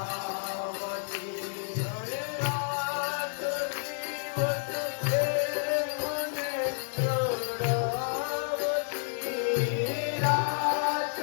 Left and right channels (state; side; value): silent; right; 58 dB below the other